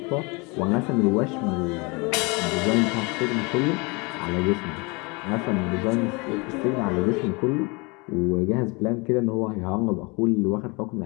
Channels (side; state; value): right; quieter; 28.3 dB